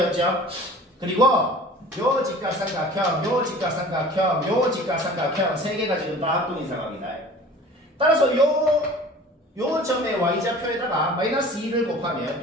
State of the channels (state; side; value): normal; both; correlation 0.43